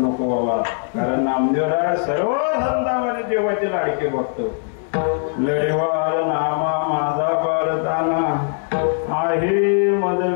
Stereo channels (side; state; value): right; silent; digital silence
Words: बाबा, कारण नामदेवला सर्व संतांमध्ये देवाचे लाडके बघतो. लढवार नामा माझा पारताना आहे